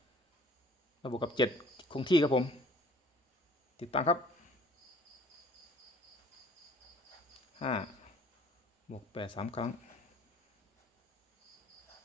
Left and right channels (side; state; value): both; normal; correlation 0.53